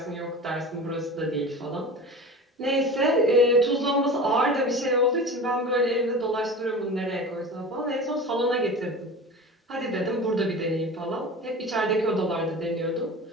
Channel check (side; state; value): both; normal; correlation 0.34